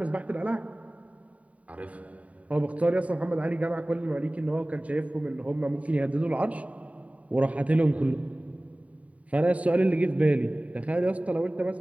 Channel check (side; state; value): left; late; 0.068 ms